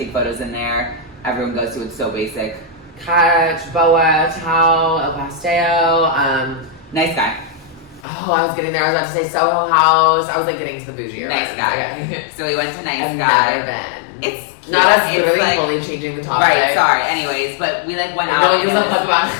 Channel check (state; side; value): drops out; right; at 8.1 s